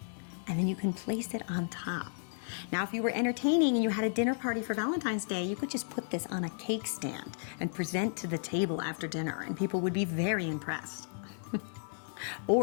and then you can place it on top. Now, if you were entertaining and you had a dinner party for Valentine's Day, you could just put this on a cake stand and present to the table after dinner, and people would be very impressed.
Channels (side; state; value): right; silent; digital silence